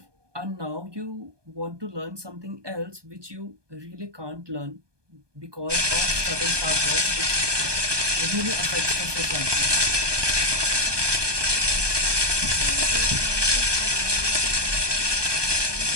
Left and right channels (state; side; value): late; left; 1.2 ms